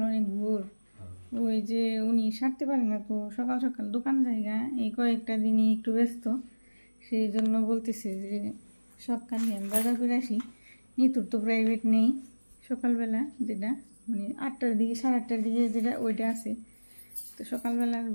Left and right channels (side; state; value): both; inverted; correlation -1.00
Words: অনেক ভোর। ওই যে উনি সারতে পারে না, তো সকাল সকাল দোকান জায়গা এই কয়েকটা দিনই একটু ব্যস্ত, সেই জন্য বলতেছে যে সকালে আমি বাজার করে আসি। নিতুর তো প্রাইভেট নেই সকালবেলা, যেটা মানে 8টার দিকে 8:30টার দিকে যেটা ওইটা আছে। তো সকালবেলা